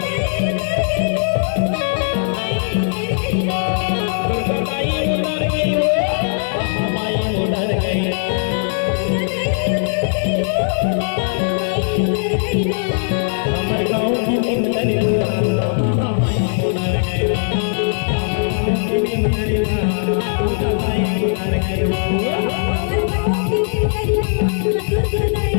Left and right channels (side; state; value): right; silent; digital silence